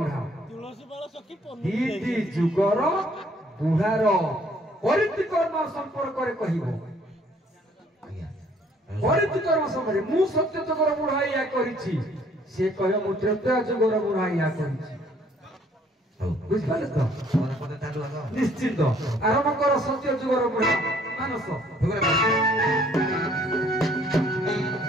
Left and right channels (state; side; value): normal; both; correlation 0.61